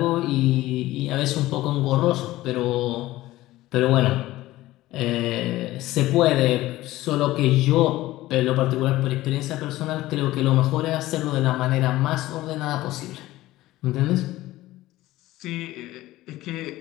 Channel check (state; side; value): quieter; right; 16.7 dB